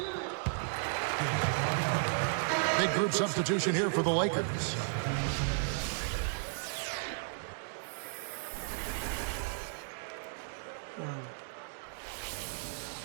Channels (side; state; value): left; silent; digital silence